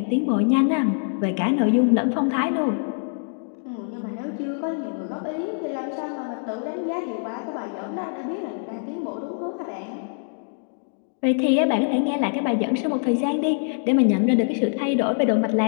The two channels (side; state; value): right; silent; digital silence